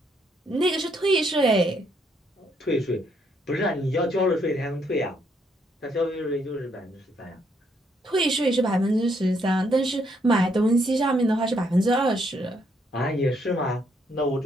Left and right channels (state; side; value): normal; both; correlation 0.72